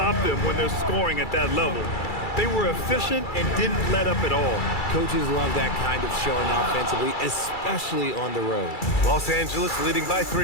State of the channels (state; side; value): late; right; 2.3 ms